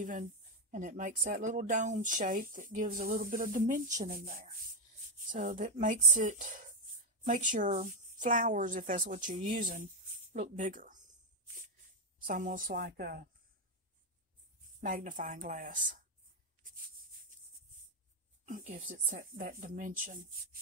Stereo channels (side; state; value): both; normal; correlation 0.04